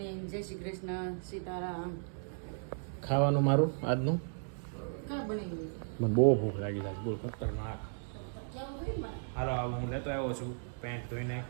જય શ્રી કૃષ્ણ. સીતારામ. ખાવાનું મારું આજનું કા બની મને બહુ ભૂખ લાગી છે. બોલ ખતરનાક. હાલો હું લેતો આવ્યો છું પેન્ટ ધોઈને.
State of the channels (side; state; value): left; silent; digital silence